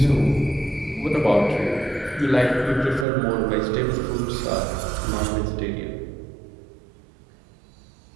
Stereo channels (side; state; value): left; drops out; at 3.1 s